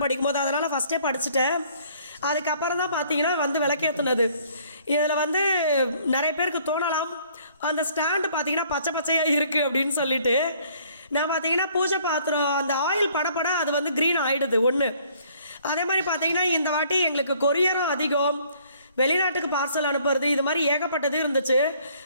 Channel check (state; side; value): inverted; both; correlation -0.60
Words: படிக்கும்போது. அதனால் ஃபஸ்ட்டே படிச்சுட்டேன். அதுக்கப்புறம் தான் பார்த்தீங்கன்னா வந்து விளக்கேற்றுனது. இதில் வந்து நிறைய பேருக்கு தோணலாம் அந்த ஸ்டாண்டு பார்த்தீங்கன்னா பச்சை பச்சையாக இருக்குது அப்படின்னு சொல்லிட்டு. நான் பார்த்தீங்கன்னா பூஜை பாத்திரம் அந்த ஆயில் படப்பட அது வந்து க்ரீன் ஆகிடுது ஒன்று. அதே மாதிரி பார்த்தீங்கன்னா இந்த வாட்டி எங்களுக்கு கொரியரும் அதிகம், வெளிநாட்டுக்கு பார்சல் அனுப்புறது, இது மாதிரி ஏகப்பட்டது இருந்துச்சு.